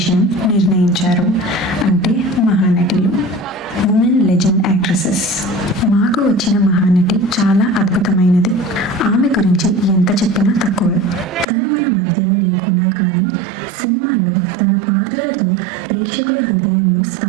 నిర్ణయించారు. అంటే మహానటులు, women legend actresses. మాకు వచ్చిన మహానటి చాలా అద్భుతమైనది. ఆమె గురించి ఎంత చెప్పినా తక్కువే. తను మన మధ్యలో లేకున్నా కానీ సినిమాలో తన పాత్రలతో ప్రేక్షకుల హృదయంలో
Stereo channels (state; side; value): drops out; left; at 11.5 s